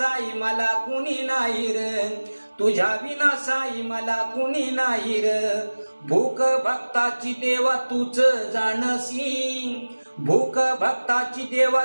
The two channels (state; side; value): inverted; both; correlation -1.00